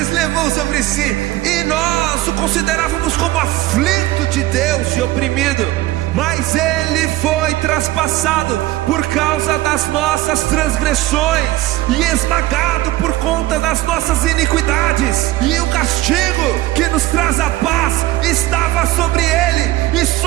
levou sobre si, e nós o considerávamos como aflito de Deus e oprimido. Mas ele foi traspassado por causa das nossas transgressões e esmagado por conta das nossas iniquidades. E o castigo que nos traz a paz estava sobre ele, e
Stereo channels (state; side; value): quieter; left; 16.8 dB